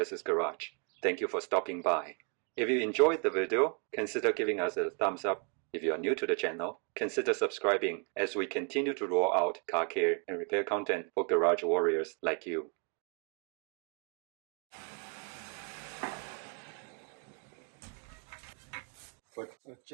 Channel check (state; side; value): quieter; left; 37.8 dB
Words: Garage. Thank you for stopping by. If you enjoyed the video, consider giving us a thumbs up. If you are new to the channel, consider subscribing as we continue to roll out car care and repair content for garage warriors like you. Put a